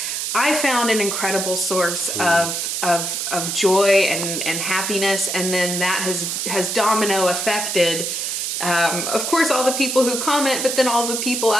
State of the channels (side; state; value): right; noise; hiss, 2 dB below the sound